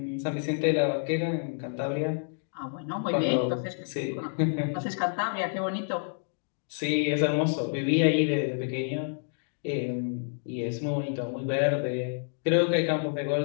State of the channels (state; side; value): silent; right; digital silence